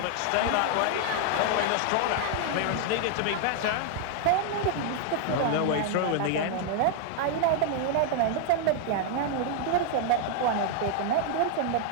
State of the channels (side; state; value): both; different; correlation 0.00